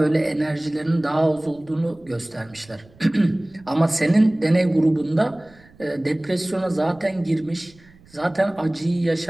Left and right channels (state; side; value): noise; right; rumble, 27 dB below the sound